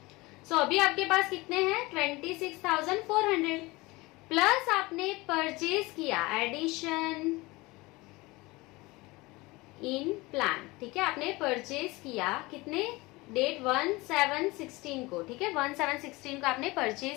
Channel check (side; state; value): right; quieter; 22.4 dB